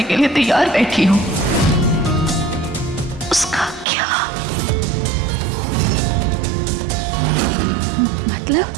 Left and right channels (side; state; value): left; drops out; at 3.9 s